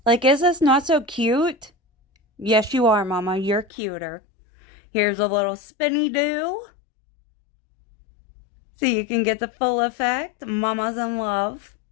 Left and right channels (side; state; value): right; drops out; at 3.7 s